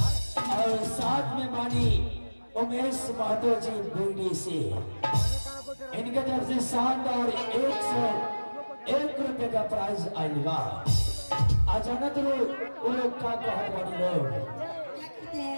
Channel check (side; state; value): both; inverted; correlation -1.00